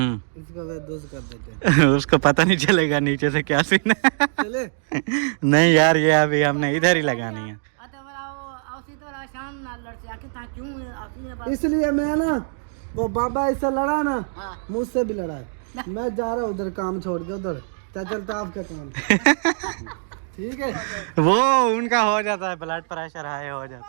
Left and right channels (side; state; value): left; silent; digital silence